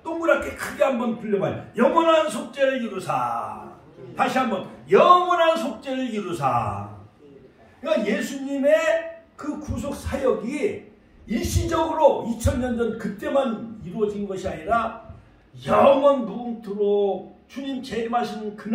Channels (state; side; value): identical; both; correlation 1.00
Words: 동그랗게 크게 한번 불려봐요. 영원한 속죄를 이루사. 다시 한번 영원한 속죄를 이루사. 그러니까 예수님의 그 구속 사역이 일시적으로 2000년 전 그때만 이루어진 것이 아니라 영원 무궁토록 주님 재림하시는